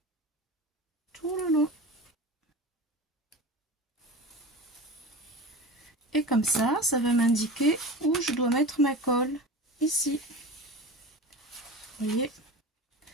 tout le long. Et comme ça va m'indiquer où je dois mettre ma colle. Ici. Vous voyez,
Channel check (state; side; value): normal; both; correlation 0.31